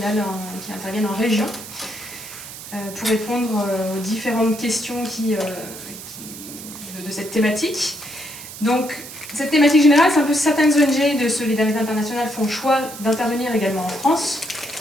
qui interviennent en région pour répondre aux différentes questions de cette thématique. Donc, cette thématique générale, c'est un peu certaines ONG de solidarité internationale font le choix d'intervenir également en France.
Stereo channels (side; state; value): right; noise; hiss, 13 dB below the sound